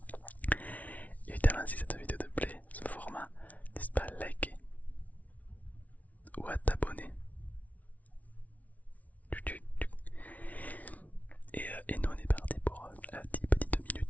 Évidemment, si cette vidéo te plaît, ce format, n'hésite pas à liker ou à t'abonner. Et nous on est parti pour 10 petites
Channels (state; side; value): late; right; 0.071 ms